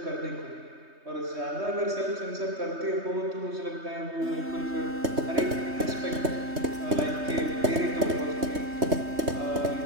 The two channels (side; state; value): left; late; 3.2 ms